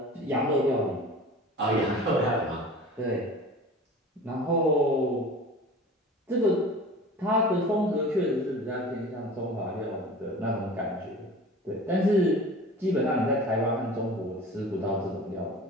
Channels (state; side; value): normal; both; correlation 0.39